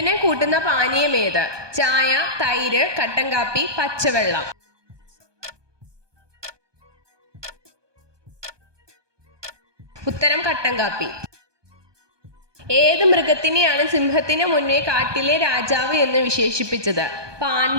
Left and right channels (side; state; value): left; late; 1.2 ms